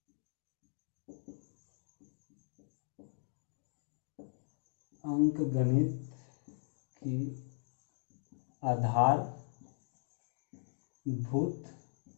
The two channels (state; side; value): silent; right; digital silence